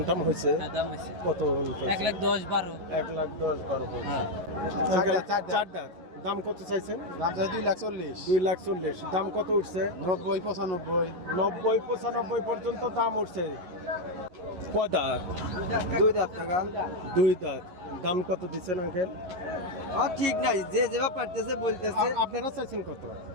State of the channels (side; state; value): left; late; 11 ms